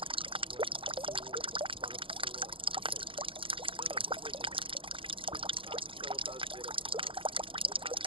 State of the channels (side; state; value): left; late; 0.25 ms